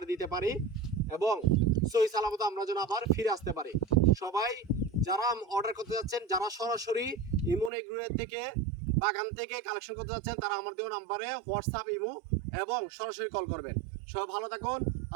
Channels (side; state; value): left; drops out; at 7.7 s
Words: দিতে পারি এবং সহি সালামত আমরা যেন আবার ফিরে আসতে পারি। সবাই যারা অর্ডার করতে যাচ্ছেন, যারা সরাসরি ইমন এগ্রোয়ের থেকে বাগান থেকে কালেকশন করতে যাচ্ছেন, তারা আমার দেওয়া নাম্বারে হোয়াটসঅ্যাপ, ইমো এবং সরাসরি কল করবেন। সবাই ভালো থাকুন।